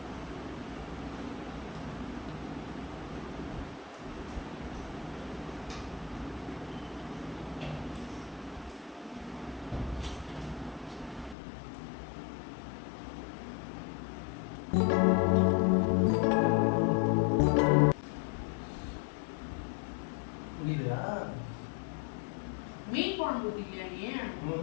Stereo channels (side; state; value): right; drops out; at 11.4 s